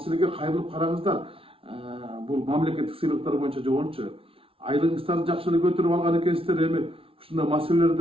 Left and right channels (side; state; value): left; late; 0.26 ms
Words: кайрылып караңыздар. Бул мамлекеттик сыйлыктар боюнча жогончу айлыгыңыздарды жакшы эле көтөрүп алган экенсиздер, эми ушундай